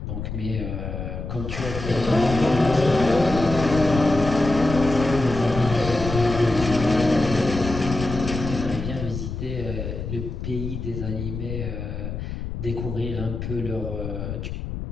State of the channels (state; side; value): noise; left; rumble, 6 dB below the sound